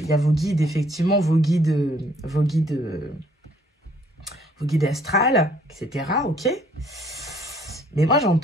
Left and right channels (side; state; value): both; normal; correlation 0.62